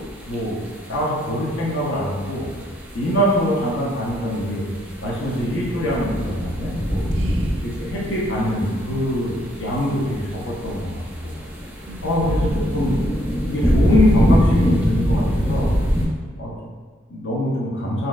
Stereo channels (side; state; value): both; normal; correlation 0.73